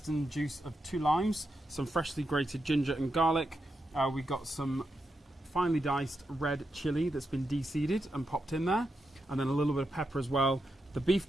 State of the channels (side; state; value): both; normal; correlation 0.86